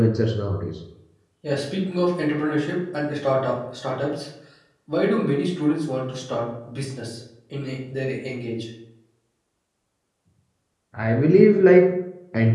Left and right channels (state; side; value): identical; both; correlation 1.00